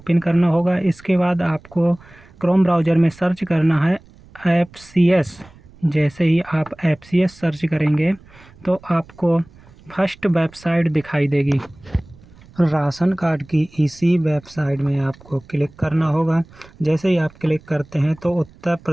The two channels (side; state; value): right; noise; rumble, 25 dB below the sound